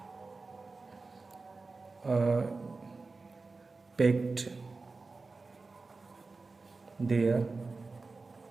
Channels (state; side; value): quieter; left; 3.8 dB